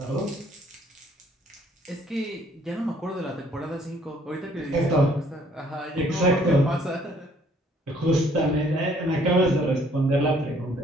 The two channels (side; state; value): both; normal; correlation 0.62